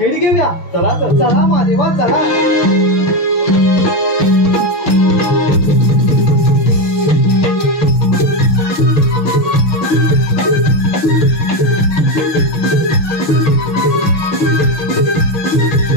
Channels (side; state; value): right; late; 6.8 ms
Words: घेऊया. चला तर. चला महादेवा, चला.